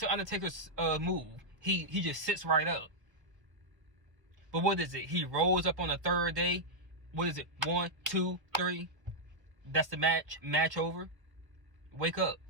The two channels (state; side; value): late; left; 1.2 ms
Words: the Undertaker's move? He just sits right up. But what is it? He rose up on the third day. What is it? 1, 2, 3. That's the match. Match over. Wake up.